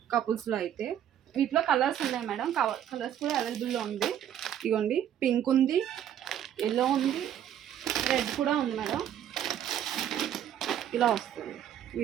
కపుల్స్లో అయితే. వీటిలో కలర్స్ ఉన్నాయి మేడం. కలర్స్ కూడా అవైలబుల్లో ఉంది. ఇదిగోండి. పింక్ ఉంది, ఎల్లో ఉంది, రెడ్ కూడా ఉంది మేడం. ఇలా వస్తుంది.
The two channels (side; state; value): left; quieter; 10.4 dB